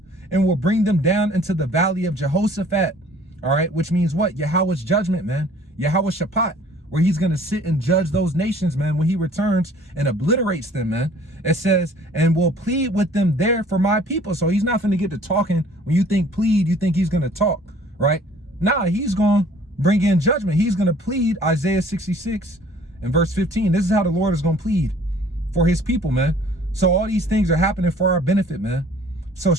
and will bring them down into the valley of Jehoshaphat. All right, which means what? Yahweh's judgment, man. Yahweh Shaphat, where he's going to sit and judge those nations, man, when he returns and obliterates them, man. It says, and will plead with them there for my people. So he's not going to get to talking. When you think plead, you think he's going to talk, right? Nah, he's going to bring in judgment. He's going to plead. Isaiah 66 and verse 15. This is how the Lord is going to plead for his people, man. So all these things are happening for our benefit, man. So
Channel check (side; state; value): both; normal; correlation 0.54